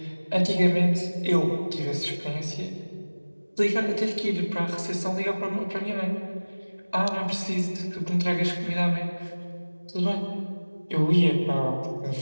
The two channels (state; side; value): inverted; both; correlation -1.00